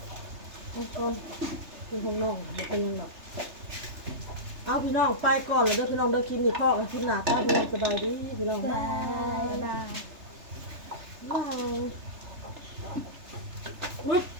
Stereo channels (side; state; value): left; late; 3.3 ms